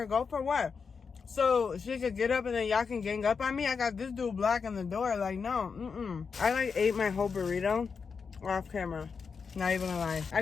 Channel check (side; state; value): right; quieter; 5.6 dB